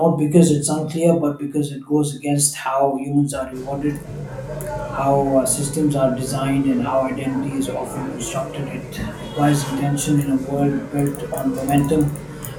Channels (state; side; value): identical; both; correlation 1.00